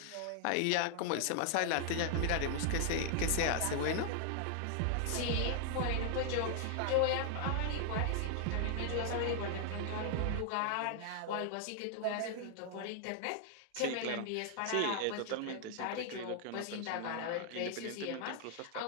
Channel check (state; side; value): different; both; correlation 0.00